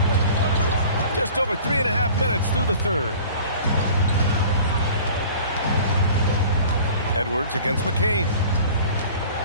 Just over 3.5 minutes through the third. Edwards against McCain.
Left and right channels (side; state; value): both; inverted; correlation -0.45